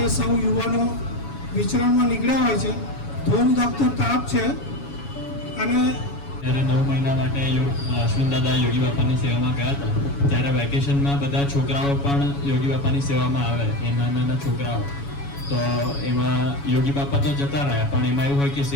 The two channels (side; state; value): right; late; 7.1 ms